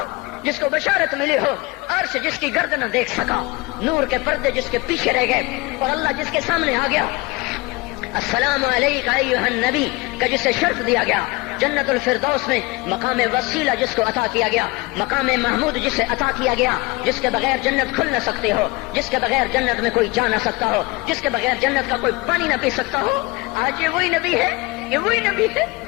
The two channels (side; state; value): right; quieter; 23.8 dB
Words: جس کو بشارت ملی ہو، عرش جس کی گرد نہ دیکھ سکا، نور کے پردے جس کے پیچھے رہ گئے، اور اللہ جس کے سامنے آ گیا، السلام علیک ایھا النبی کا جسے شرف دیا گیا، جنت الفردوس میں مقام وسیلہ جس کو عطا کیا گیا، مقام محمود جسے عطا کیا گیا، جس کے بغیر جنت کھل نہ سکتے ہو، جس کے بغیر جنت میں کوئی جا نہ سکتا ہو، جس کے بغیر جنت کا کوئی پانی نہ پی سکتا ہو، آج یہ وہی نبی ہے،